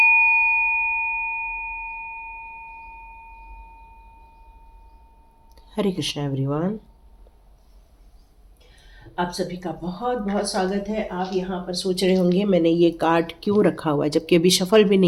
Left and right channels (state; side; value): identical; both; correlation 1.00